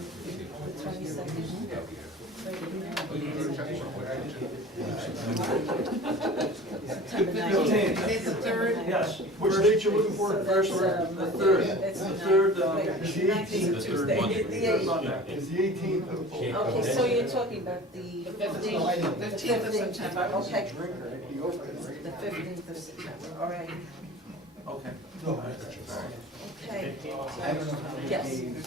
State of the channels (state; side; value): normal; both; correlation 0.40